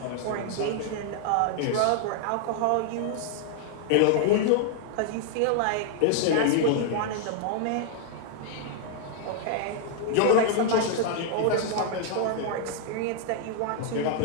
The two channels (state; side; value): different; both; correlation 0.00